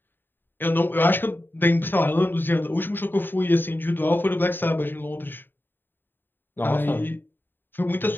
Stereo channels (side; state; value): right; late; 0.094 ms